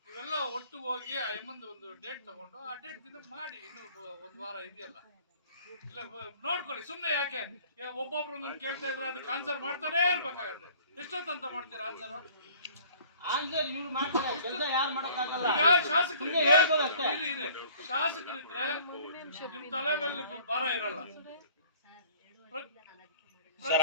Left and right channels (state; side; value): inverted; both; correlation -0.51